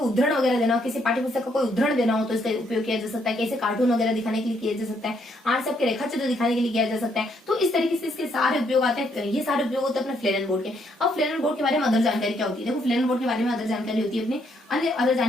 उद्धरण वगैरह देना हो, किसी पाठ्य पुस्तक का कोई उद्धरण देना हो तो इसका उपयोग किया जा सकता है। कैसे कार्टून वगैरह दिखाने के लिए किया जा सकता है, आर्ट से आपके रेखा चित्र दिखाने के लिए किया जा सकता है। तो इस तरीके से इसके सारे उपयोग आते हैं। ये सारे उपयोग होते हैं अपने फ्लेरन बोर्ड के। अब फ्लेरन बोर्ड के बारे में अदर जानकारी क्या होती है, देखो फ्लेरन बोर्ड के बारे में अदर जानकारी होती है अपने अदर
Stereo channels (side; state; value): both; normal; correlation 0.72